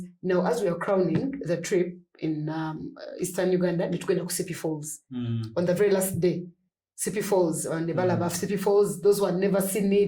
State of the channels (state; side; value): identical; both; correlation 1.00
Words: Now, as we are crowning the trip in Eastern Uganda, we're going to Sipi Falls on the very last day. Sipi Falls, on the Balabaf Sipi Falls, those who had never seen